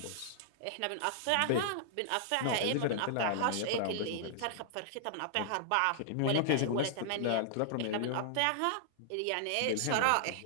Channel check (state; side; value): different; both; correlation -0.01